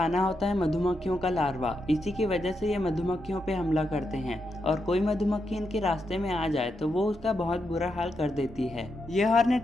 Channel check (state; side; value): normal; both; correlation 0.84